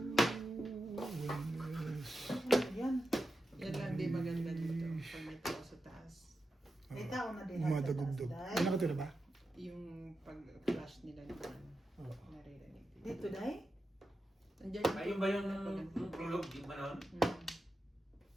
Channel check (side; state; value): both; normal; correlation 0.90